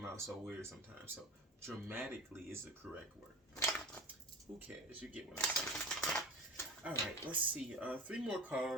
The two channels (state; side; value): normal; both; correlation 0.32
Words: out so weird sometimes. So dramatically is the correct word. Who cares? You get what I'm saying. All right, let's see. 3 more